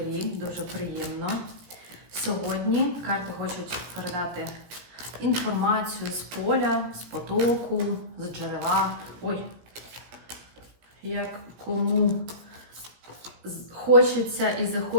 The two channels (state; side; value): late; left; 17 ms